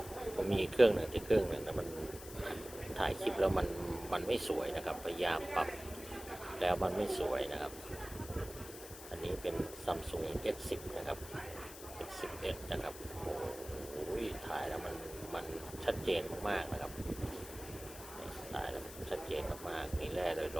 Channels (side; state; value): left; noise; hiss, 13 dB below the sound